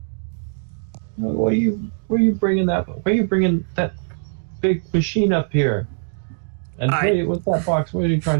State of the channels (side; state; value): left; silent; digital silence